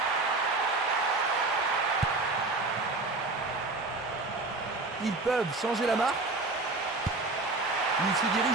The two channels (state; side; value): quieter; left; 3.4 dB